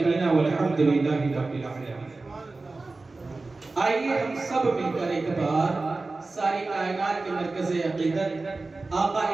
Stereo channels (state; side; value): quieter; left; 3.5 dB